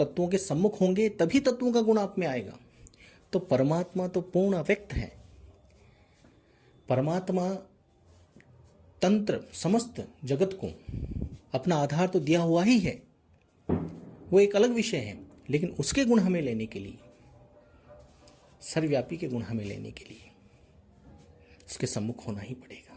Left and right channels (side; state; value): both; identical; correlation 1.00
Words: के सम्मुख होंगे तभी तत्वों का गुण आप में आएगा। तो परमात्मा तो पूर्ण अव्यक्त है, परमात्मा तंत्र समस्त जगत को अपना आधार तो दिया हुआ ही है, वो एक अलग विषय है, लेकिन उसके गुण हमें लेने के लिए, सर्वव्यापी के गुण हमें लेने के लिए उसके सम्मुख होना ही